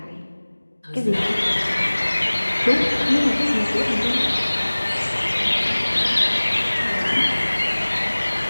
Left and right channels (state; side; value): inverted; both; correlation -1.00